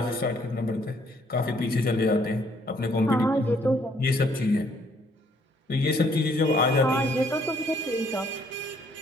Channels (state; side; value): normal; both; correlation 0.66